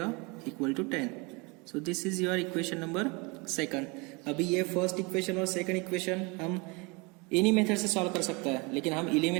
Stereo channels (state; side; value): quieter; left; 28.6 dB